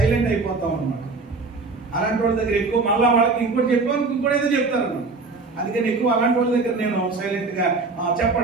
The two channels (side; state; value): left; quieter; 3.9 dB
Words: అయిపోతాం అనమాట. అలాంటి వాళ్ళ దగ్గర ఎక్కువ మళ్ళీ వాళ్ళకి ఇంకోటి చెప్పాను ఇంకోటి ఏదో చెప్తారు అన్నమాట. అందుకని ఎక్కువ అలాంటి వాళ్ళ దగ్గర నేను సైలెంట్ గా